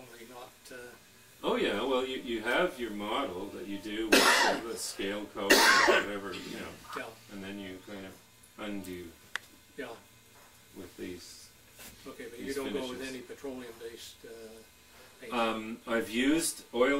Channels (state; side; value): identical; both; correlation 1.00